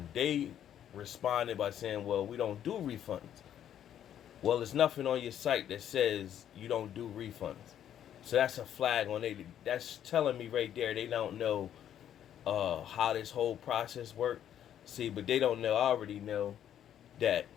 They responded by saying, "Well, we don't do refunds." Well, there's nothing on your site that says you don't do refunds. So that's a flag on it. That's telling me right there they don't know how this whole process works. See, but they don't know. I already know that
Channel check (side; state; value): right; quieter; 10.2 dB